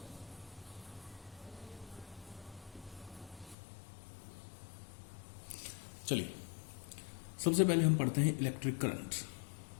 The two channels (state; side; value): drops out; right; at 3.6 s